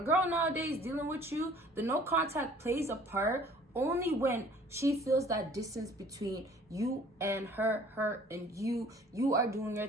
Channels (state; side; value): normal; both; correlation 0.52